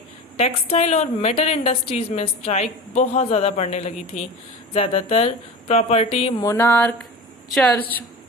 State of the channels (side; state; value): both; normal; correlation 0.32